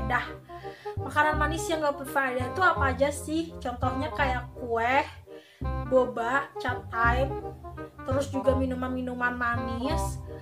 Makanan manis yang gak berfaedah itu apa aja sih? Contohnya kayak kue, boba, cat time, terus juga minuman-minuman manis,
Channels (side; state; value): both; identical; correlation 1.00